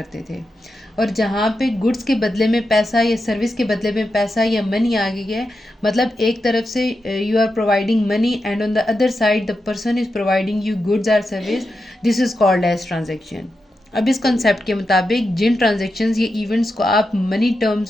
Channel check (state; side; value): normal; both; correlation 0.88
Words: थे। और जहाँ पे गुड्स के बदले में पैसा या सर्विस के बदले में पैसा या मनी आ गई है, मतलब एक तरफ से you are providing money and on the other side the person is providing you goods or service, this is called as transaction. अब इस कंसेप्ट के मुताबिक जिन ट्रांजेक्शन्स या इवेंट्स को आप मनी